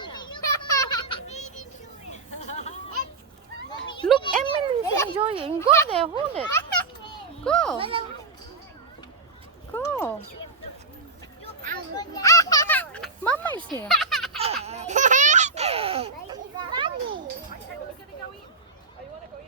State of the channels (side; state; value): left; quieter; 4.1 dB